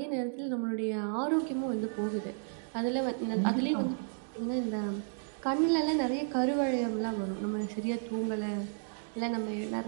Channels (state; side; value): silent; left; digital silence